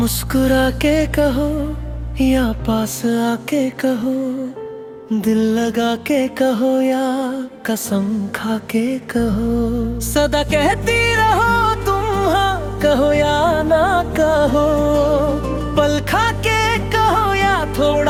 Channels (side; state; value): both; identical; correlation 1.00